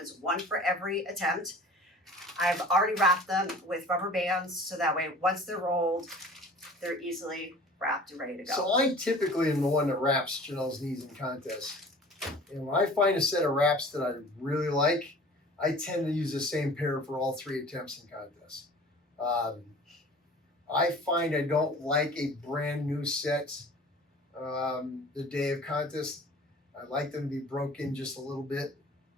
1 for every attempt. I've already wrapped them with rubber bands, so that way, once they're rolled, they're easily wrapped and ready to go. So I typically am the one that wraps Janelle's knees in contests. And when I find a set of wraps that I really like, I tend to use the same pair for all 3 attempts in contests. I find I don't like a brand new set the day of contest. I like them to be broken just a little bit.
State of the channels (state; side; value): normal; both; correlation 0.44